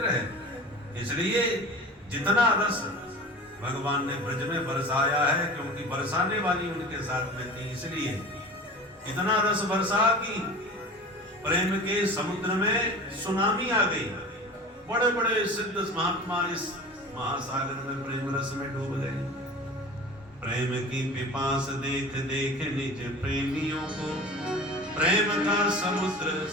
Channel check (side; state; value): both; normal; correlation 0.37